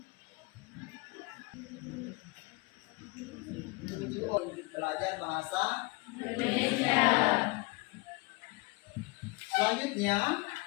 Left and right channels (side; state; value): right; quieter; 25.6 dB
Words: Tujuh untuk belajar bahasa Indonesia. Selanjutnya,